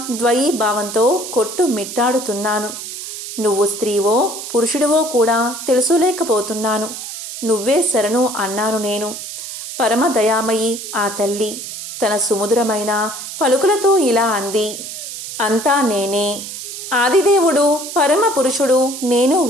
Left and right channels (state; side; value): noise; right; hiss, 9 dB below the sound